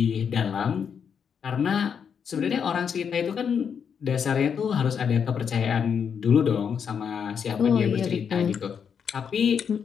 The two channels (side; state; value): right; quieter; 7.1 dB